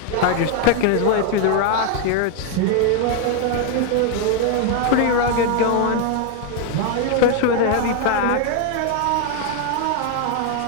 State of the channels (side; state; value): both; different; correlation 0.01